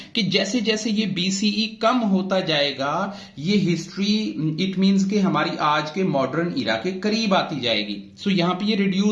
कि जैसे जैसे ये BCE कम होता जाएगा, ये हिस्ट्री इट मींस कि हमारी आज के मॉडर्न इरा के करीब आती जाएगी। सो यहां पे ये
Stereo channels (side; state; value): both; identical; correlation 1.00